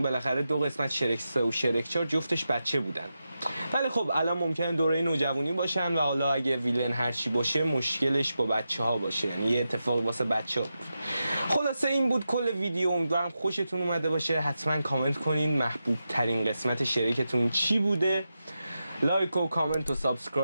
بالاخره 2 قسمت شرک 3 و شرک 4 جفتش بچه بودن، ولی خب الان ممکنه دوره نوجوانی باشن و حالا اگه ویلن هرچی باشه مشکلش با بچه ها باشه، یعنی یه اتفاق واسه بچه ها. خلاصه این بود کل ویدیو. امیدوارم خوشتون اومده باشه. حتما کامنت کنین محبوب ترین قسمت شرکتون چی بوده. لایک و کامنت و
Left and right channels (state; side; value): inverted; both; correlation -0.89